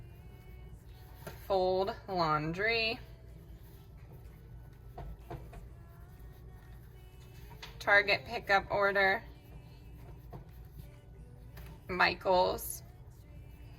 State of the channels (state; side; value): identical; both; correlation 1.00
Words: Fold laundry. Target pickup order. Michael's,